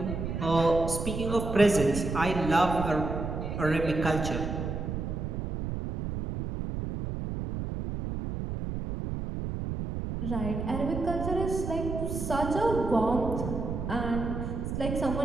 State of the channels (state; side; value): noise; right; rumble, 4 dB below the sound